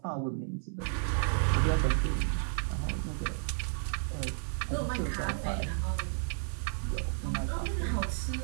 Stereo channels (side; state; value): left; silent; 56 dB below the other